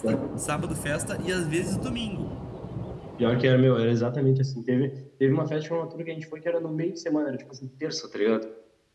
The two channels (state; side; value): identical; both; correlation 1.00